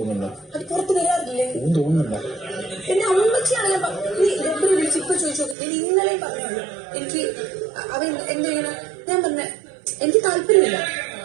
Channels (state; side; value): drops out; left; at 5.6 s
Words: അത് പുറത്ത് വരാറില്ലേ? തോന്നുന്നുണ്ടോ? എന്നെ അമ്മച്ചിയാണ് ഞാൻ വിളിച്ച് ഇപ്പൊ ചോദിച്ചു. ഞാൻ ഇന്നലെയും പറഞ്ഞുള്ളൂ എനിക്ക് അവൻ എന്ത് ചെയ്യണം. ഞാൻ പറഞ്ഞ എനിക്ക് താല്പര്യമില്ല.